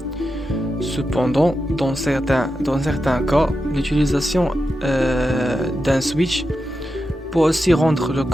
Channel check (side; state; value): both; normal; correlation 0.89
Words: Cependant, dans certains cas, l'utilisation d'un switch peut aussi rendre le